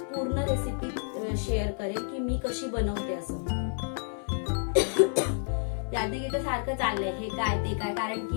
पूर्ण रेसिपी शेअर करेन की मी कशी बनवते असं. यादी सारखं चाललंय, हे काय ते काय, कारण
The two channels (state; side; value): silent; right; 57 dB below the other